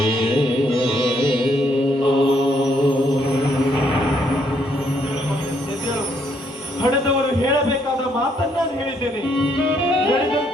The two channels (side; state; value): both; normal; correlation 0.71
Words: ಹಡೆದವರು ಹೇಳಬೇಕಾದ ಮಾತನ್ನ ನಾನು ಹೇಳಿದ್ದೇನೆ.